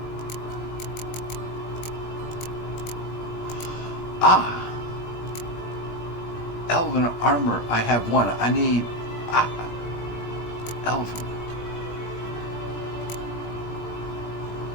Elven armor. I have one. I need elven.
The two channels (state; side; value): late; right; 20 ms